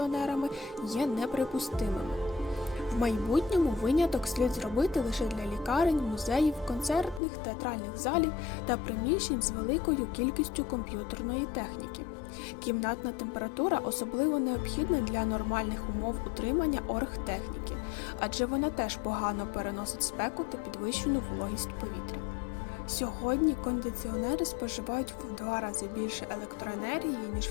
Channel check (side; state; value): right; drops out; at 7.2 s